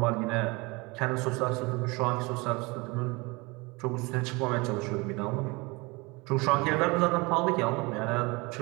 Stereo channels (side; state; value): left; quieter; 25.7 dB